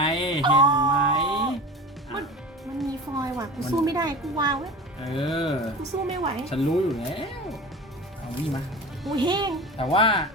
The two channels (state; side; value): normal; both; correlation 0.33